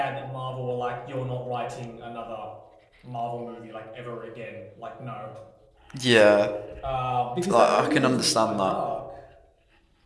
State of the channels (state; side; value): identical; both; correlation 1.00